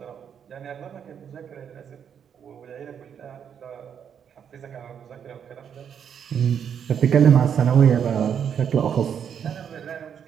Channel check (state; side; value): quieter; left; 8.1 dB